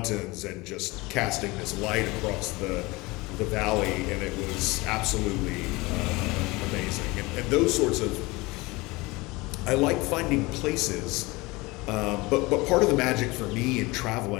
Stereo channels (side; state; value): right; quieter; 22.9 dB